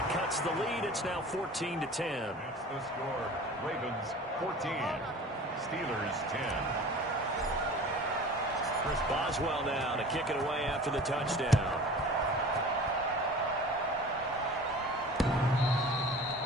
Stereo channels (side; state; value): both; normal; correlation 0.41